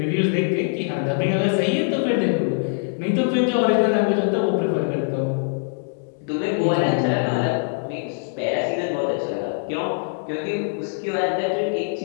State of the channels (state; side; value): silent; right; 62 dB below the other